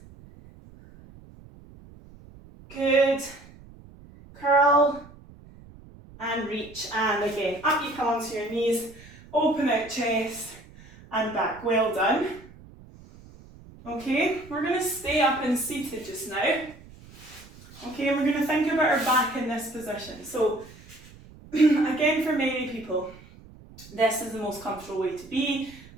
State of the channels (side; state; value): right; noise; rumble, 21 dB below the sound